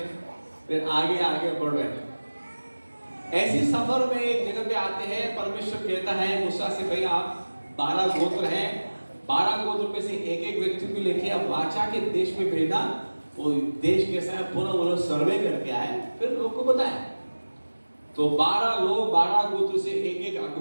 फिर आगे आगे बढ़ रहे। ऐसी सफर में एक जगह पे आते हैं, परमेश्वर कहता है मूसा से, भाई आप 12 गोत्र हैं, 12 गोत्र में से एक एक व्यक्ति को लेके आप वाचा के देश में भेजना। वो देश कैसा है पूरा वो लोग सर्वे करके आए, फिर लोग को बताए। तो 12 लोग 12 गोत्र से एक एक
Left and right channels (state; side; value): inverted; both; correlation -1.00